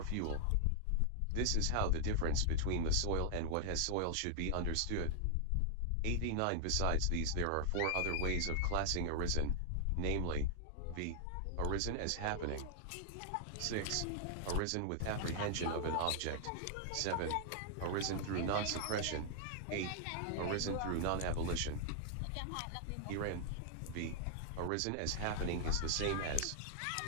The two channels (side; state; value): both; different; correlation 0.00